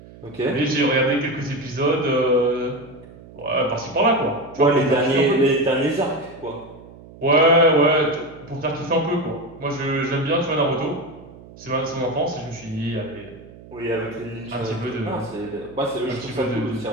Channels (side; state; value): right; noise; hum, 20 dB below the sound